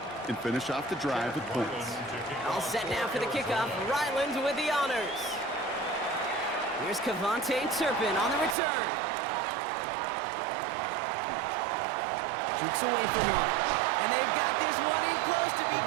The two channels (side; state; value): left; drops out; at 8.6 s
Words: and finish off the drive with points. All set now for the kickoff. Ryland with the honors. Here's Cavante Turpin on the return. Jukes away from one. And they've got this one in close to